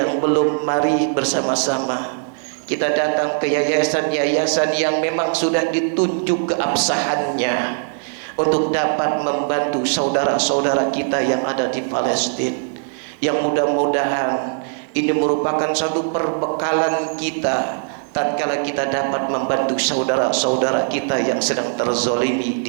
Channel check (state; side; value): silent; left; digital silence